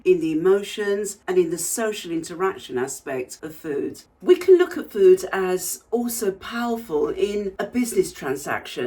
in the emotions, and in the social interaction aspect of food. We can look at food as also powerful in a business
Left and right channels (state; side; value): identical; both; correlation 1.00